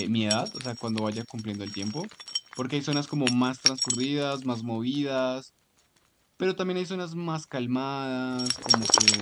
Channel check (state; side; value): identical; both; correlation 1.00